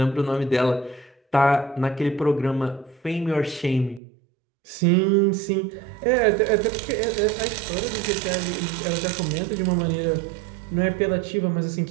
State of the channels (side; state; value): left; drops out; at 4.0 s